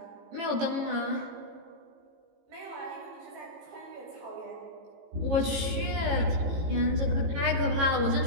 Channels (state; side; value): late; left; 18 ms